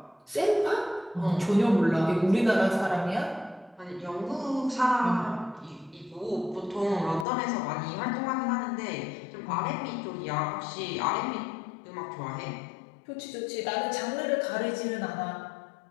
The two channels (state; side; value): drops out; right; at 7.2 s